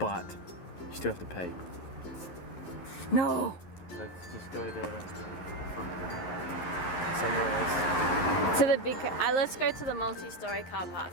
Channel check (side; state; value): right; late; 11 ms